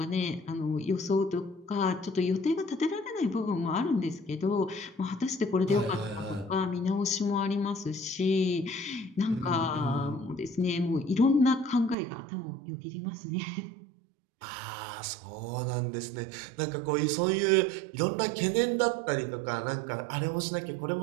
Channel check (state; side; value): drops out; left; at 12.0 s